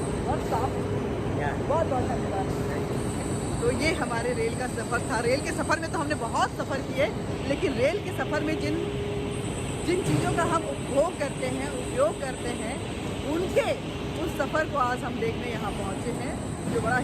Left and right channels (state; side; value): identical; both; correlation 1.00